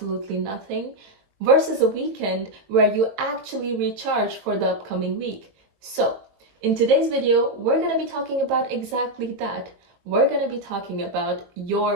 nothing versus a weekend where you actually recharge for the upcoming week. So, in today's video, we're going to be talking about exactly that. We're going to be talking about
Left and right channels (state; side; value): late; left; 20 ms